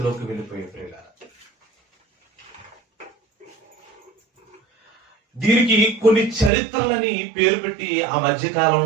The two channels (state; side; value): drops out; left; at 6.5 s